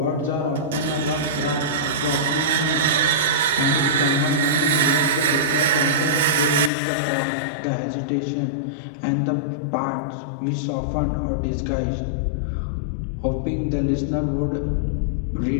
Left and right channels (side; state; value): right; drops out; at 6.7 s